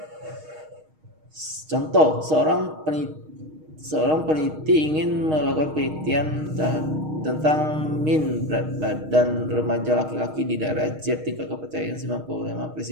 Contoh, seorang peneliti ingin melakukan penelitian tentang min berat badan remaja laki-laki di daerah Z, tingkat kepercayaan 95,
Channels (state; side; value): late; left; 6.4 ms